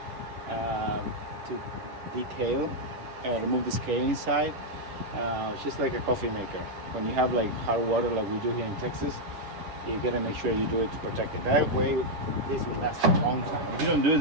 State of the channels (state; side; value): late; left; 10 ms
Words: to decale, remove the scale inside. It's just like a coffee maker. When you have like hot water like we do here in Texas, you gotta make sure you do it to protect it. That way, this will last a long time. If you don't do